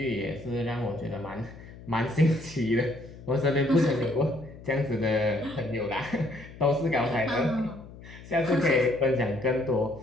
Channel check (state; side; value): noise; left; hum, 17 dB below the sound